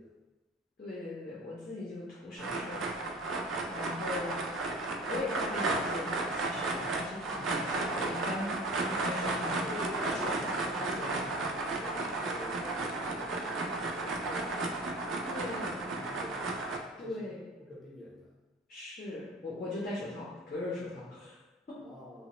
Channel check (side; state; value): both; normal; correlation 0.37